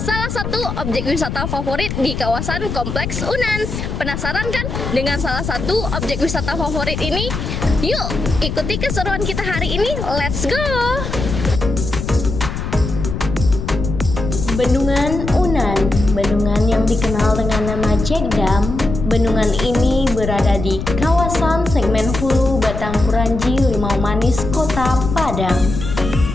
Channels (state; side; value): noise; left; rumble, 5 dB below the sound